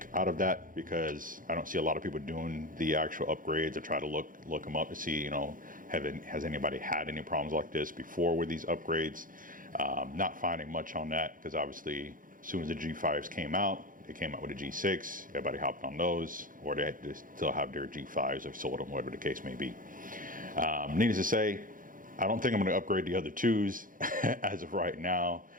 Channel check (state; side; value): late; left; 0.40 ms